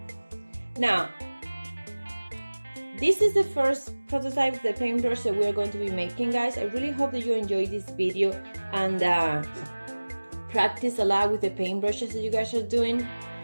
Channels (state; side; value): inverted; both; correlation -1.00